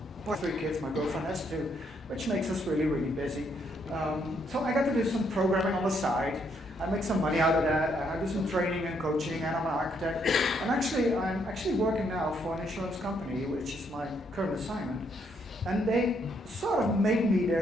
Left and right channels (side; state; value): both; normal; correlation 0.73